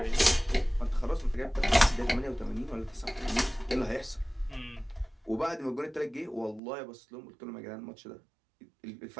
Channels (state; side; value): drops out; left; at 6.6 s